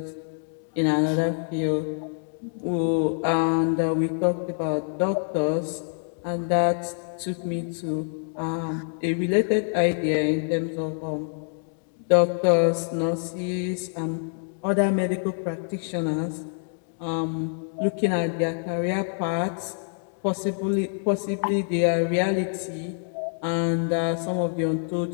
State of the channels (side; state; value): right; silent; digital silence